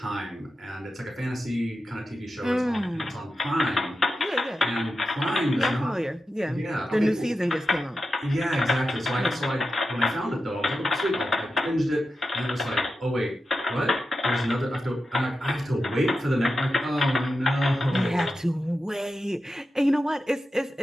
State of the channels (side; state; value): both; normal; correlation 0.91